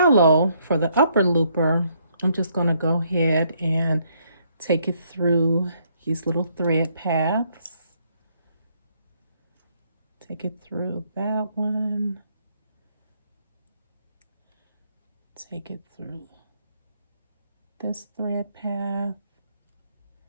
for the upper looper, I'm just going to go ahead and take it through these little thread paths. Take it through that one. Take it through this thread path.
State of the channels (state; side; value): inverted; both; correlation -0.71